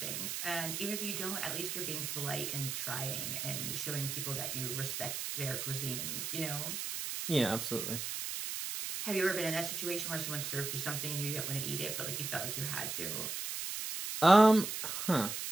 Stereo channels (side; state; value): right; noise; hiss, 3 dB below the sound